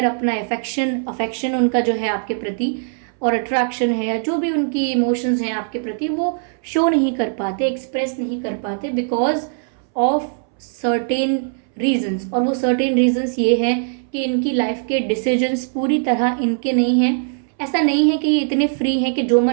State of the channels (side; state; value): left; silent; 63 dB below the other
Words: अपना अफेक्शन उनका जो है आपके प्रति और अट्रैक्शन है या जो भी उनकी इमोशंस हैं आपके प्रति वो शो नहीं कर पाते, एक्सप्रेस नहीं कर पाते बिकॉज ऑफ सर्टेन रीजंस। और वो सर्टेन रीजंस ये हैं कि इनकी लाइफ के डिसीजंस पूरी तरह इनके नहीं हैं। ऐसा नहीं है कि ये इतने फ्री हैं कि जो